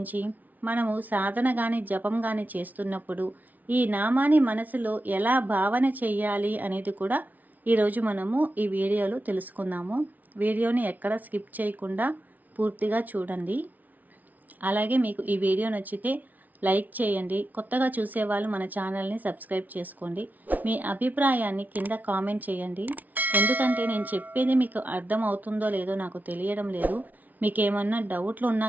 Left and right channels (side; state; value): left; late; 0.078 ms